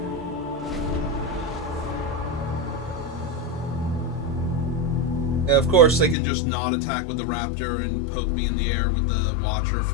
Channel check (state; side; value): drops out; right; at 6.2 s